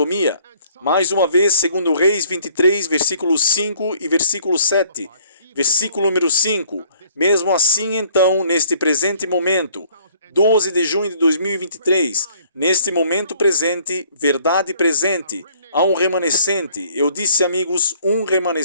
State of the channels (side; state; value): both; inverted; correlation -0.59